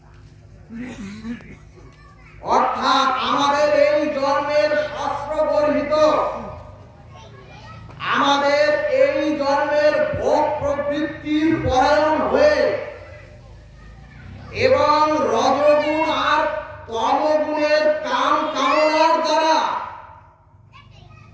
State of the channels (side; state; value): both; identical; correlation 1.00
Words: অর্থাৎ আমাদের এই জন্মের শাস্ত্র গর্হিত, আমাদের এই জন্মের ভোগ প্রবৃত্তির পরায়ণ হয়ে এবং রজগুণ আর তমগুণের কাম কামনার দ্বারা